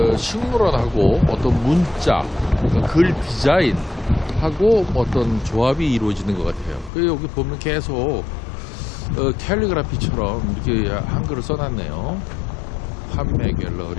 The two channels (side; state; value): right; drops out; at 6.9 s